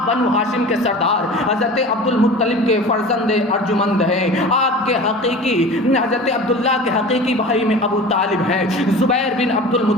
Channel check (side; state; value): both; normal; correlation 0.37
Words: بنو ہاشم کے سردار حضرت عبد المطلب کے فرزند ارجمند ہیں. آپ کے حقیقی حضرت عبداللہ کے حقیقی بھائی میں ابو طالب ہیں, زبیر بن عبد